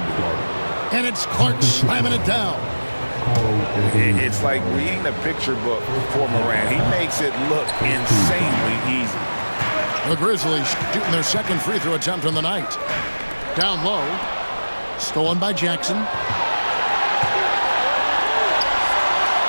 And it's Clark slamming it down. It's like reading a picture book for Morant. He makes it look insanely easy. The Grizzlies shooting their second free throw attempt on the night. Down low. Stolen by Jackson.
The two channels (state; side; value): inverted; both; correlation -1.00